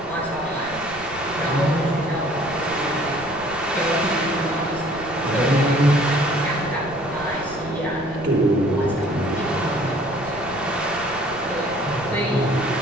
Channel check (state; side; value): noise; right; rumble, 19 dB below the sound